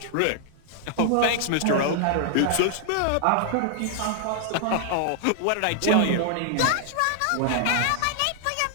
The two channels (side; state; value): both; different; correlation 0.00